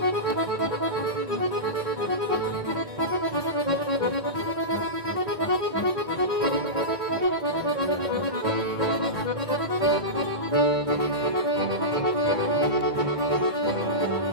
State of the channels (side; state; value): left; late; 1.9 ms